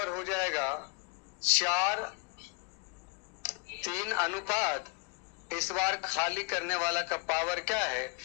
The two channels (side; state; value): right; quieter; 31.1 dB